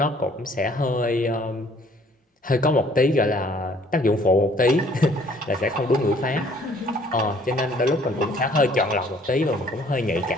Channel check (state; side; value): normal; both; correlation 0.59